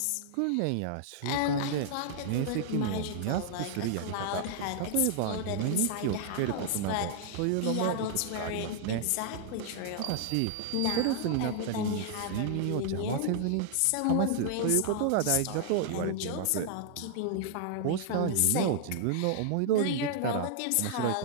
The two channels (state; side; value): different; both; correlation -0.01